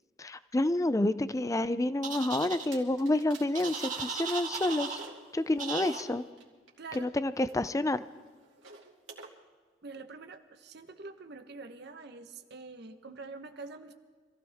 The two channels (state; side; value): normal; both; correlation 0.77